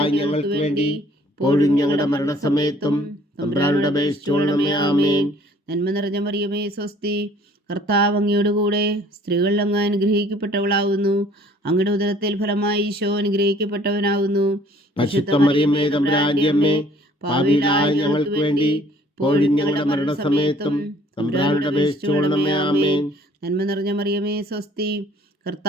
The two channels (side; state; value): both; normal; correlation 0.56